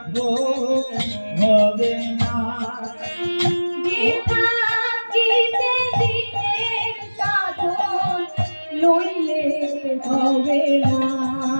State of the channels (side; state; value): both; inverted; correlation -1.00